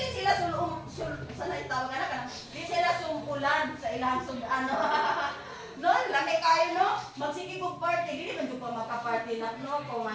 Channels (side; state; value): both; identical; correlation 1.00